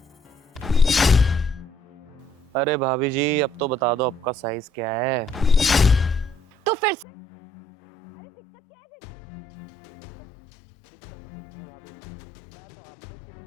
अरे भाभी जी अब तो बता दो आपका साइज क्या है। तो फिर से? अरे दिक्कत क्या है तेरी? दिक्कत तो कुछ नहीं है भाभी जी। मैं तो आपसे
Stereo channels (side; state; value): right; drops out; at 7.1 s